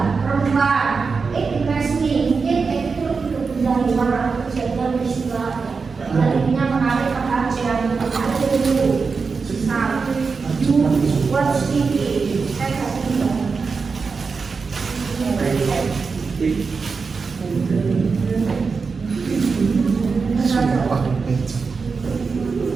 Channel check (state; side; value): quieter; left; 4.9 dB